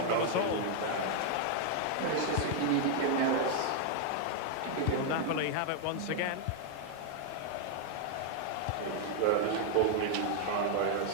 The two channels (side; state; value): both; different; correlation 0.00